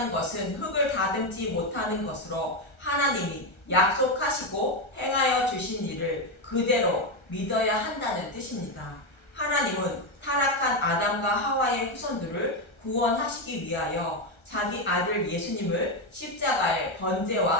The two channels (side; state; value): right; late; 1.3 ms